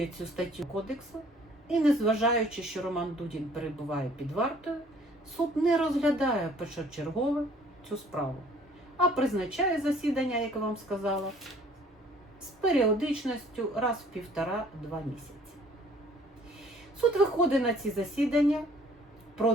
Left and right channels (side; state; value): both; normal; correlation 0.56